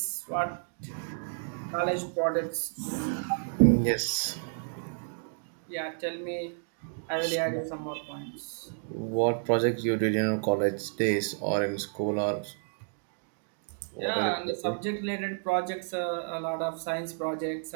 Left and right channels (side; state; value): left; silent; digital silence